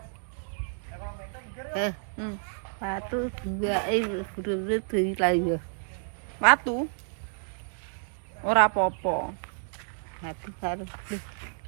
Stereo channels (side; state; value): left; silent; digital silence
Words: Patu dua bener-bener dari layu. Watu. Ora apa-apa. Hati harus.